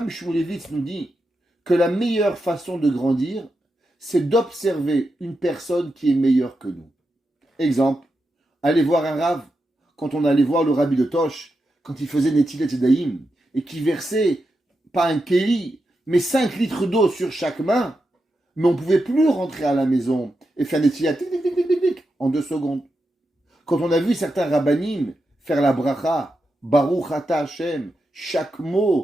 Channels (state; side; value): normal; both; correlation 0.87